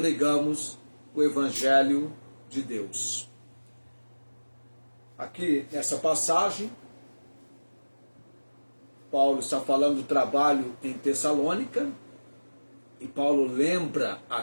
o Evangelho de Deus. Aqui nessa passagem, Paulo está falando do trabalho em Tessalônica, e Paulo lembra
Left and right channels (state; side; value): inverted; both; correlation -1.00